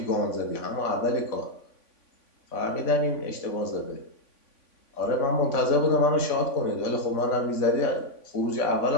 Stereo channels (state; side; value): late; right; 3.5 ms